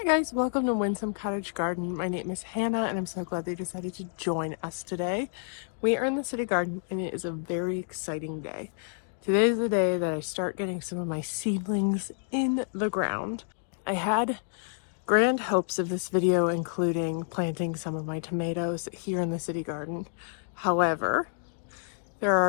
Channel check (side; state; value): right; silent; digital silence